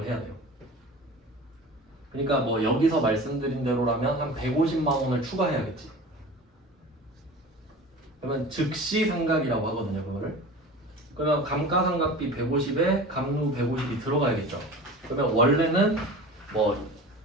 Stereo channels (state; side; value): normal; both; correlation 0.37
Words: 해야 돼요. 그러니까 뭐 여기서 말씀드린 대로라면 한 150만 원을 추가해야겠지. 그러면 즉시 상각이라고 하거든요, 그거를. 그러면 감가상각비 150에 감루 150이 들어가야겠죠. 그러면 원래는 뭐